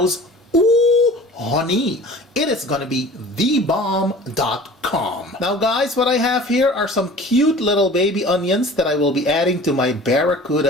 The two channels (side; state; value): both; normal; correlation 0.43